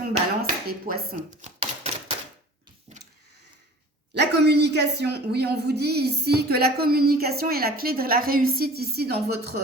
balance et poisson? La communication, oui, on vous dit ici que la communication est la clé de la réussite ici dans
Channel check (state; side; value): normal; both; correlation 0.44